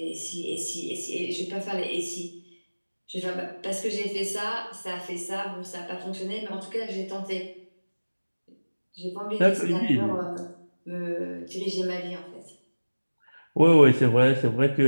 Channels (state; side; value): inverted; both; correlation -1.00